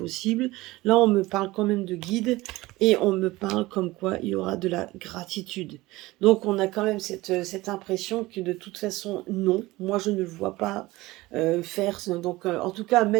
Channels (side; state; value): left; quieter; 19.6 dB